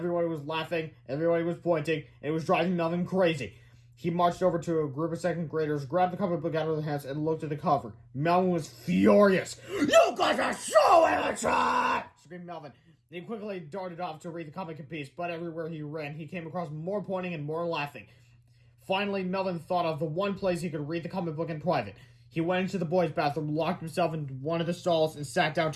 was laughing, everybody was pointing, and it was driving Melvin crazy. He marched over to a group of second graders, grabbed the comic book out of their hands, and looked at the cover. Melvin was furious. You guys are so immature! Screamed Melvin. He quickly darted off to read the comic in peace, but everywhere he ran, he came across more pointing and more laughing. Finally, Melvin thought of the one place he could read the comic book in private. He went into the boys' bathroom, locked himself into one of the stalls, and sat down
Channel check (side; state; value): both; identical; correlation 1.00